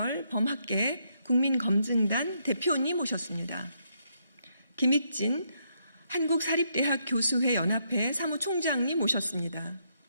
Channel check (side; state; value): both; inverted; correlation -0.76